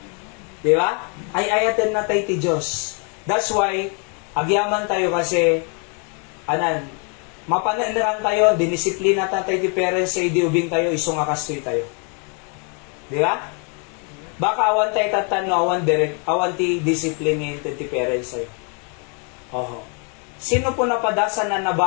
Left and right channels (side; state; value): right; quieter; 38.2 dB